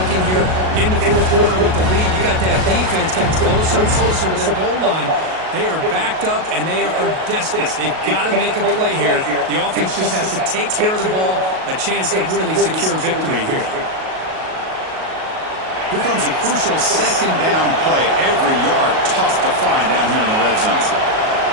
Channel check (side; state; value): left; late; 38 ms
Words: here in the fourth quarter with the lead. You got that defense getting closer and closer to their goal line. They are backed up and they are desperate. They've got to make a play here. The offense just has to take care of the ball. A chance to really secure victory here. Here comes a crucial second down play. Every yard tough to find down here in the red zone.